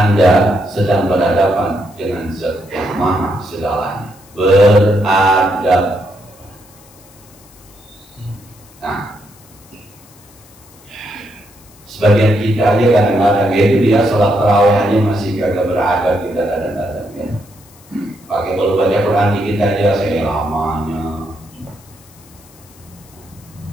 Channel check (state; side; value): noise; left; hiss, 26 dB below the sound